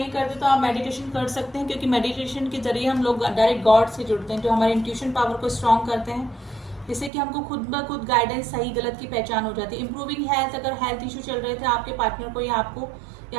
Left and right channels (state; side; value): drops out; left; at 7.1 s